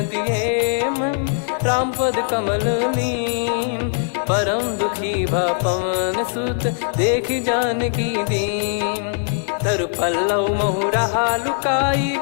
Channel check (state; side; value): silent; right; digital silence